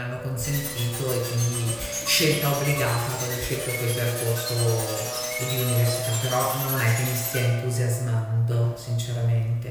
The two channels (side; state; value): both; identical; correlation 1.00